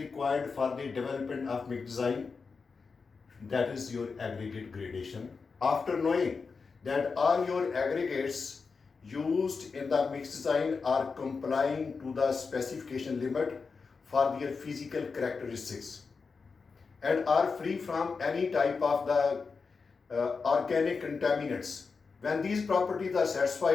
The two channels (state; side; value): quieter; right; 4.9 dB